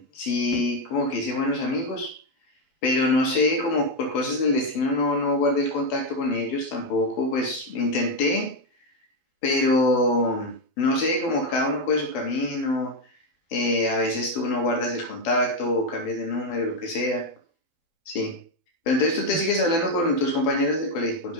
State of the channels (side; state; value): right; late; 12 ms